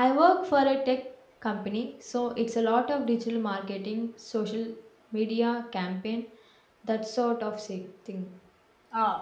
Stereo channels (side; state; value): both; identical; correlation 1.00